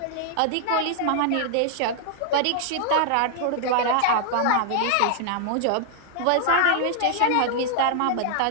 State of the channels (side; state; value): both; different; correlation -0.01